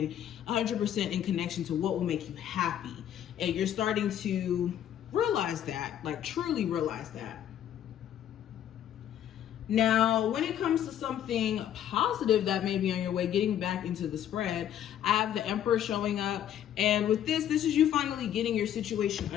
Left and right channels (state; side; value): quieter; right; 10.5 dB